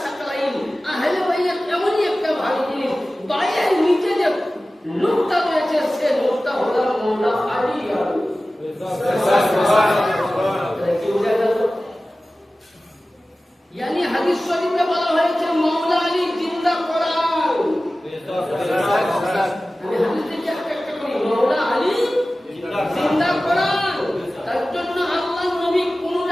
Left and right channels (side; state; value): both; normal; correlation 0.96